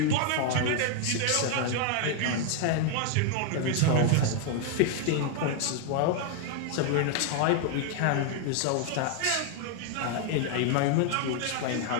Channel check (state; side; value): different; both; correlation 0.00